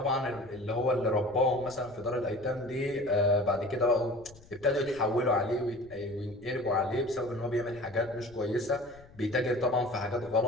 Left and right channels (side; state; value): left; noise; rumble, 23 dB below the sound